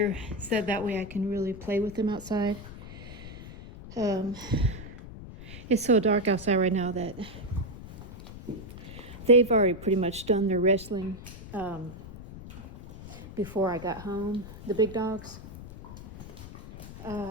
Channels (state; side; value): noise; left; rumble, 14 dB below the sound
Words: so that way I can really play with them outside. It's so dark outside right now that they've already pretty much done their wrestling before I got home, the big dogs.